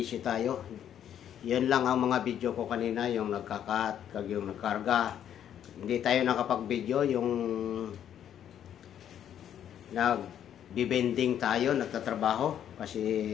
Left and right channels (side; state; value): right; quieter; 9.9 dB